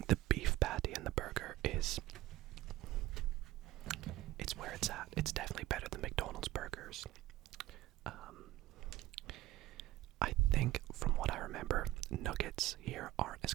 the beef patty in the burger is... It's where it's at. It's definitely better than McDonald's burgers. I think, from what I remember, nuggets here aren't as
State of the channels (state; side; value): quieter; left; 16.0 dB